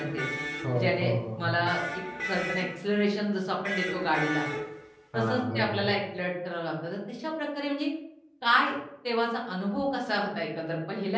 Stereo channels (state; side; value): identical; both; correlation 1.00